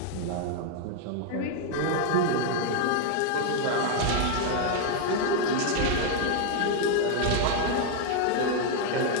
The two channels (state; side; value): different; both; correlation 0.00